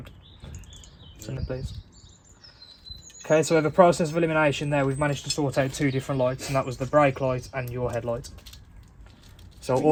Send it please. Okay, so we have a process of elimination there. We've managed to sort out two different lights, and that was the brake light and your headlight. So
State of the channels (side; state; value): both; identical; correlation 1.00